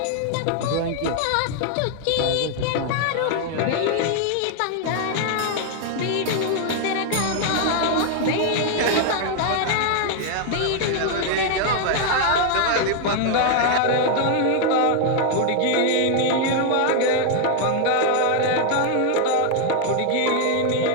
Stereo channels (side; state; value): both; different; correlation 0.00